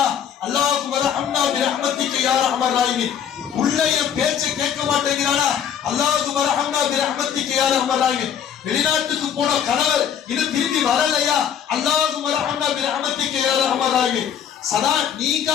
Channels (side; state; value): right; quieter; 8.7 dB